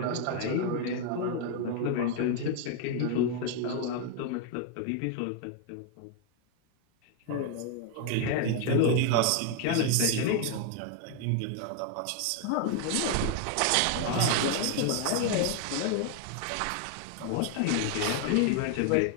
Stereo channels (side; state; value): both; different; correlation 0.00